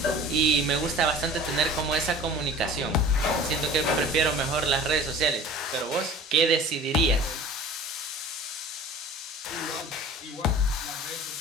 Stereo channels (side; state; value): both; normal; correlation 0.42